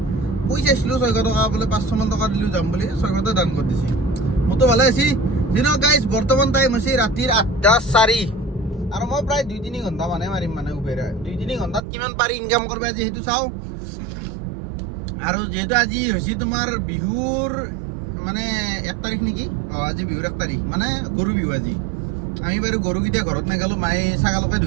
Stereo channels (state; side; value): drops out; left; at 11.8 s